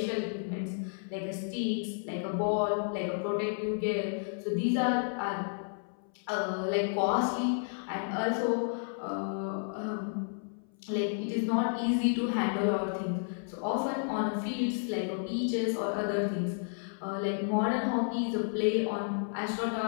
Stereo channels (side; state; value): right; silent; 56 dB below the other